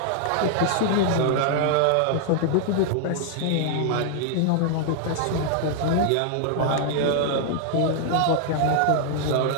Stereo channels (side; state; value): both; different; correlation -0.01